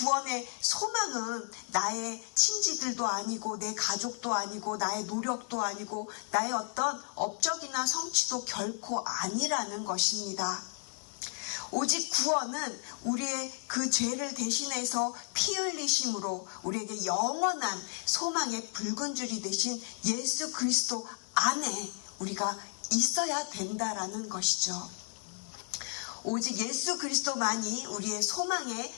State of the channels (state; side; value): silent; right; 56 dB below the other